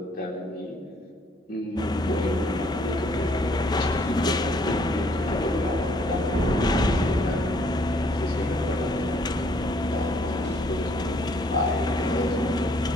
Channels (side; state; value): both; normal; correlation 0.64